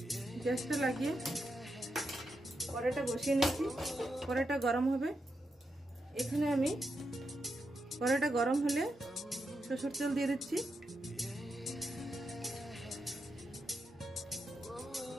গ্যাসটা লাগিয়ে কড়াইটা বসিয়ে নিয়েছি। কড়াইটা গরম হবে। এখানে আমি কড়াইটা গরম হলে সরষের তেল দিয়ে দিচ্ছি।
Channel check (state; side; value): normal; both; correlation 0.85